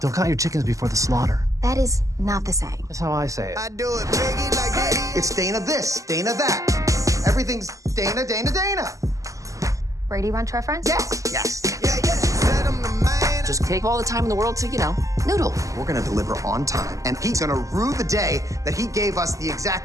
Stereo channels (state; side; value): late; left; 0.16 ms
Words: count your chickens before the slaughter. That is not the same. That's how I say it. I do it biggie like Diddy. It's Dana this, Dana that. Everything's Dana, Dana, Dana. Brady Bunch reference? Yes, yes. Yeah. Said I'm the man. Just take all the time in the world to, noodle. We're gonna deliver on time, and he's gonna rue the day that he gave us the